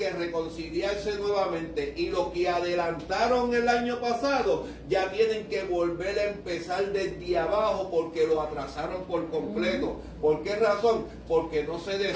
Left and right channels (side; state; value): both; identical; correlation 1.00